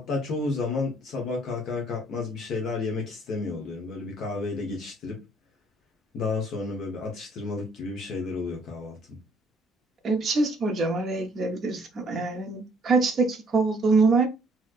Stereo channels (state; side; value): normal; both; correlation 0.62